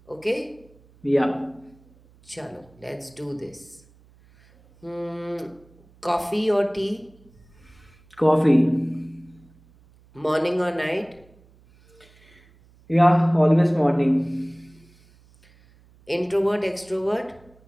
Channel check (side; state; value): right; noise; hum, 29 dB below the sound